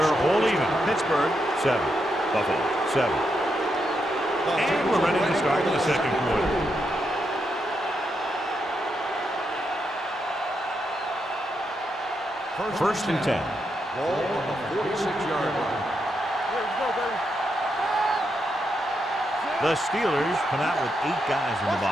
all even. Pittsburgh, 7. Buffalo, 7. And we're ready to start the second quarter. First and 10. Ball on the 46-yard line. Let's go, baby. The Steelers come out with 8 guys in the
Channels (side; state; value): both; normal; correlation 0.82